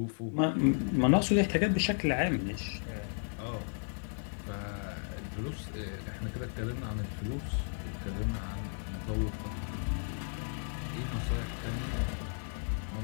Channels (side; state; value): right; silent; 55 dB below the other